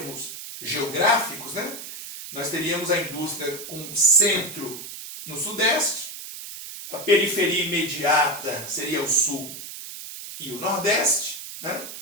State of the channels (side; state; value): right; noise; hiss, 10 dB below the sound